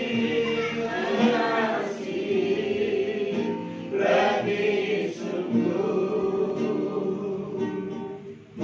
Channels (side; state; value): both; identical; correlation 1.00